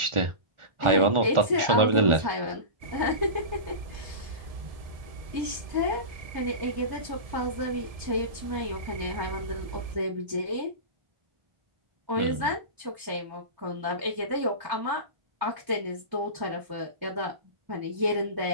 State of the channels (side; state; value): left; late; 1.4 ms